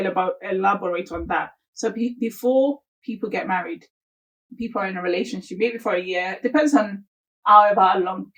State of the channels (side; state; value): both; identical; correlation 1.00